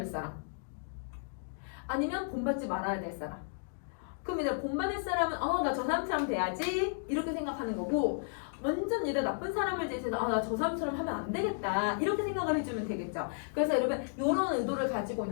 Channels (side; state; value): right; silent; digital silence